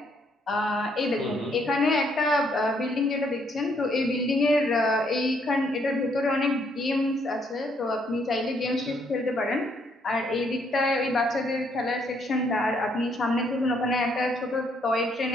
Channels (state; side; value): normal; both; correlation 0.70